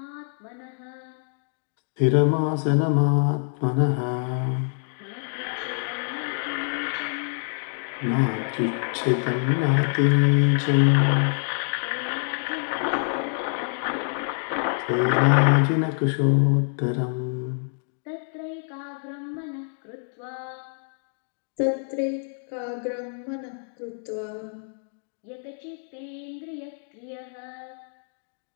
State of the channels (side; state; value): right; silent; digital silence